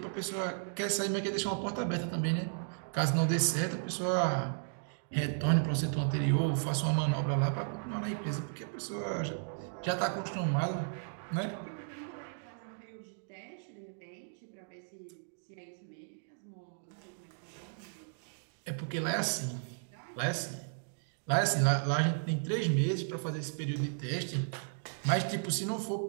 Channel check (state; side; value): silent; left; digital silence